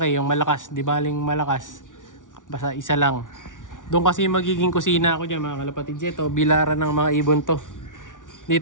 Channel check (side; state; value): right; late; 0.88 ms